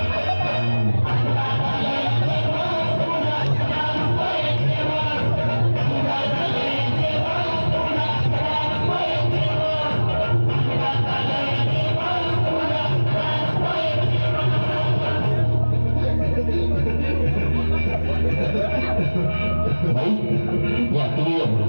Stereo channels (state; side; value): inverted; both; correlation -1.00